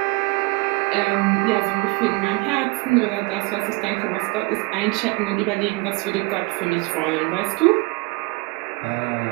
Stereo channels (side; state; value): left; quieter; 26.5 dB